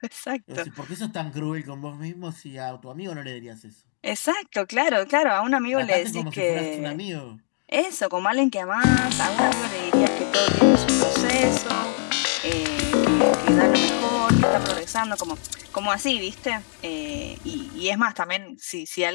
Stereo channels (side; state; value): right; silent; 58 dB below the other